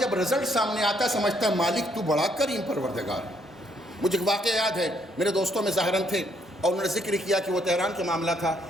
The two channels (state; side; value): normal; both; correlation 0.70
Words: رزلٹ سامنے آتا ہے سمجھتا ہے مالک تو بڑا کریم پروردگار. مجھے ایک واقعہ یاد ہے, میرے دوستوں میں ظاہراً تھے اور انہوں نے ذکر کیا کہ وہ تہران کے معاملہ تھا.